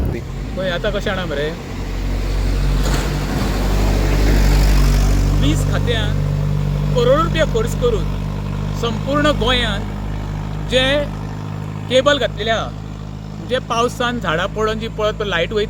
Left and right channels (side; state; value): both; identical; correlation 1.00